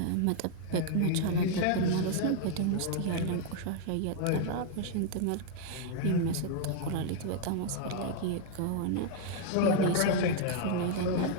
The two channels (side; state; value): both; different; correlation 0.00